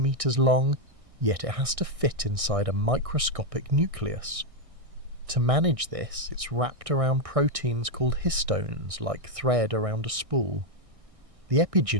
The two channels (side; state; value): left; late; 1.6 ms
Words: long, yet it has to fit inside a microscopic nucleus. To manage this, it's wrapped around proteins called histones, like thread around a spool. The